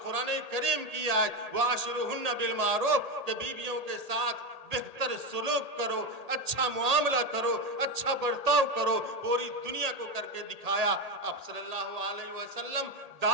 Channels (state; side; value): late; left; 1.8 ms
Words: करीम की आयत वाशिरुहुन्ना बिल मारूफ के बीवियों के साथ बेहतर सलूक करो, अच्छा मुआमला करो, अच्छा बर्ताव करो, पूरी दुनिया को करके दिखाया। आप सल्लल्लाहु अलैहि वसल्लम